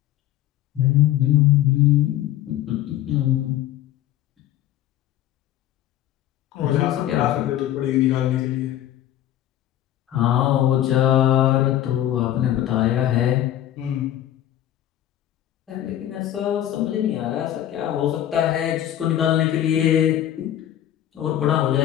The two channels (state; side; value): quieter; right; 12.4 dB